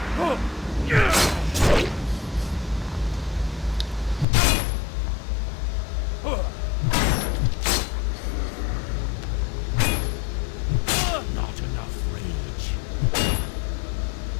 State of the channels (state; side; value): drops out; right; at 4.2 s